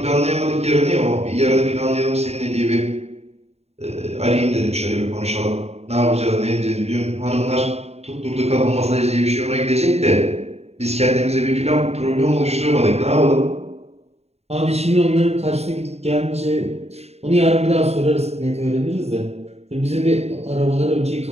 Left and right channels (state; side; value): late; left; 0.31 ms